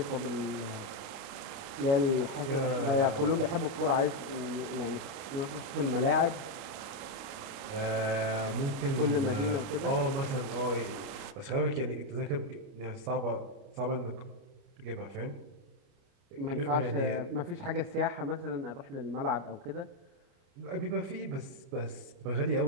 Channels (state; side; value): late; left; 30 ms